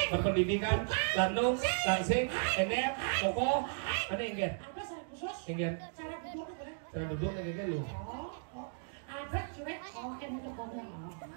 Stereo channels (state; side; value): silent; left; digital silence